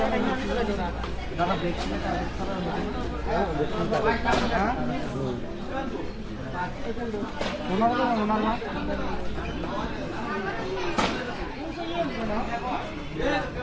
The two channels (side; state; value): both; identical; correlation 1.00